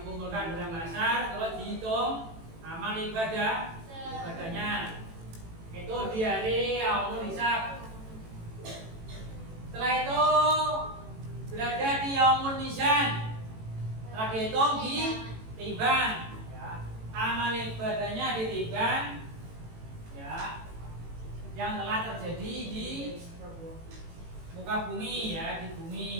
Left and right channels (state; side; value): late; left; 18 ms